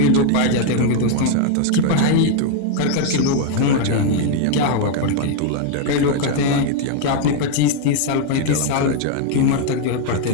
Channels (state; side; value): different; both; correlation 0.00